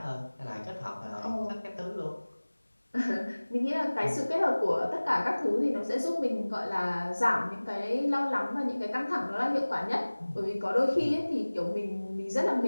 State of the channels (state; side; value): inverted; both; correlation -1.00